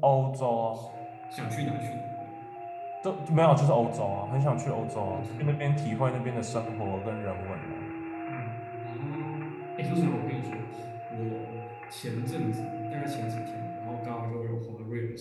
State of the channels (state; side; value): identical; both; correlation 1.00